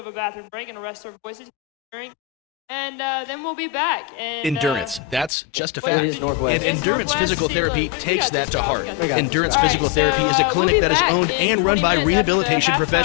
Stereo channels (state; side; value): drops out; right; at 5.3 s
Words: a bathroom break and rest our voices, drink, and then we'll be back. And, Endurance, that's just a fact. Northwest. And Endurance Physical Therapy takes that to heart. Endurance Physical Therapy is a clinic that is owned and run by rehabilitation